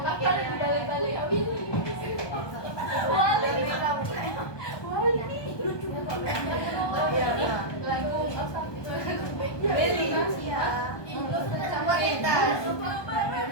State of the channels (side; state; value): right; late; 1.2 ms